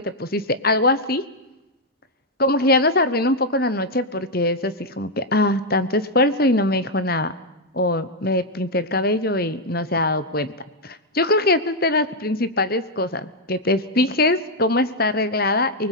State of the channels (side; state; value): both; normal; correlation 0.00